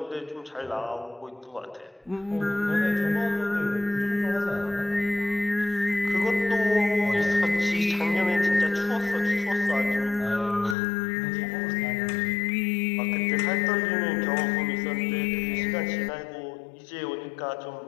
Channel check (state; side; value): drops out; right; at 10.8 s